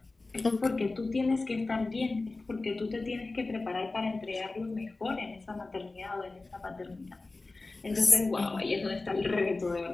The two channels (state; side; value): quieter; right; 3.4 dB